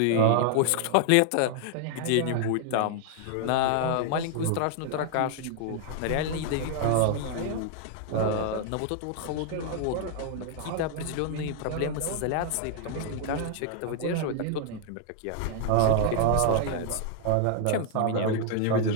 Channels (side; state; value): both; different; correlation 0.00